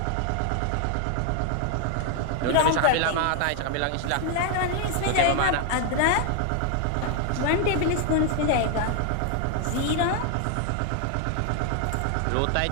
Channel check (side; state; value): both; different; correlation 0.00